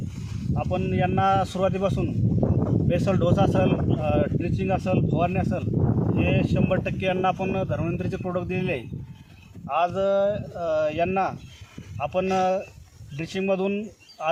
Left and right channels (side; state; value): both; identical; correlation 1.00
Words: आपण यांना सुरुवातीपासून बेसल डोस असेल, ड्रिचिंग असेल, फवारणी असेल, हे 100% यांना आपण धन्वंतरीचे प्रोडक्ट दिलेले आहे. आज यांना आपण ड्रिचिंगमधून